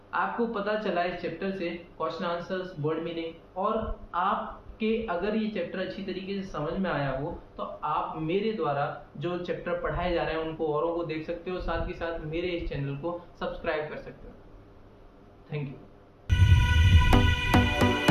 आपको पता चला इस चैप्टर से क्वेश्चन आंसर्स, वर्ड मीनिंग, और आपके अगर ये चैप्टर अच्छी तरीके से समझ में आया हो तो आप मेरे द्वारा जो चैप्टर पढ़ाए जा रहे हैं उनको औरों को देख सकते हो, साथ ही साथ मेरे इस चैनल को सब्सक्राइब कर सकते हो। Thank you.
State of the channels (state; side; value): identical; both; correlation 1.00